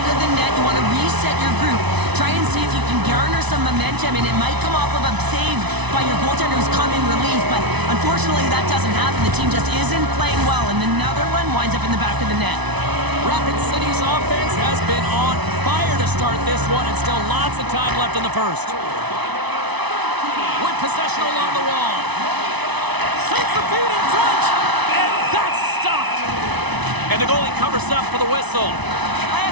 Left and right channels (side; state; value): left; late; 1.0 ms